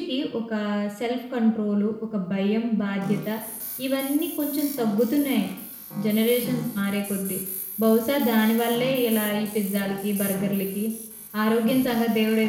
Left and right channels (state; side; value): identical; both; correlation 1.00